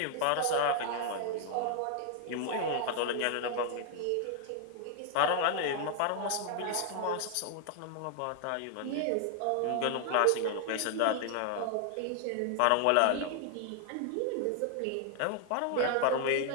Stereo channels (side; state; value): both; different; correlation 0.00